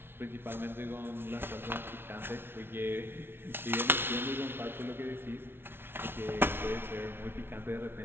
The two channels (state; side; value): late; left; 0.11 ms